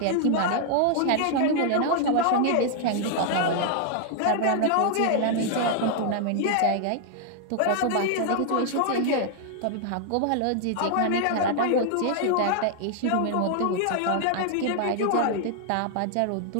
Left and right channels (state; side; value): different; both; correlation 0.00